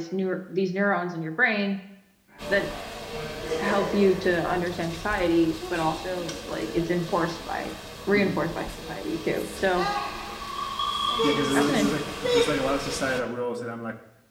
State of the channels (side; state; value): both; identical; correlation 1.00